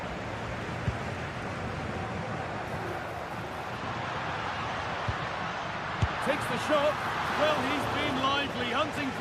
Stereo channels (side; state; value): both; identical; correlation 1.00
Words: Takes the shot. Well, he's been lively, hunting